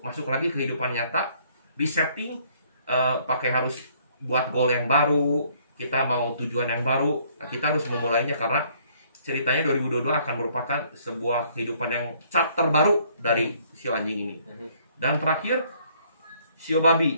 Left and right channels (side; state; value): both; inverted; correlation -0.63